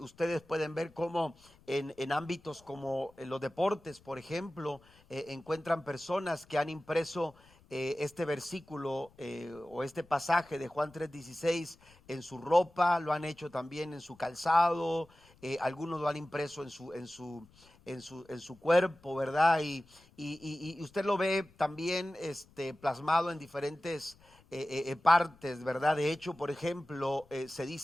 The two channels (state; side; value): noise; left; rumble, 28 dB below the sound